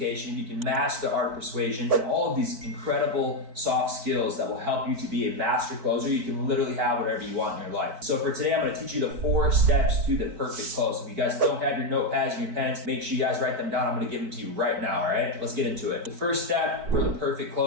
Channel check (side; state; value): left; late; 4.5 ms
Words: if you can master the art of persuasion, and all of these incredible soft skills that will help you to be a master closer, you can literally have whatever you want in your life. So for today, I'm going to teach you the 4 steps to the perfect close. If you guys don't have your notepads and your pens, make sure you guys write them down. I'm going to give them to you right now, all right? Let's get into it. The first step for the perfect